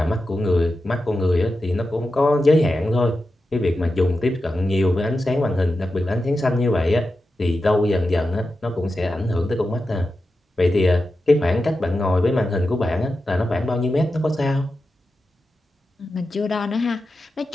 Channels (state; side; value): normal; both; correlation 0.91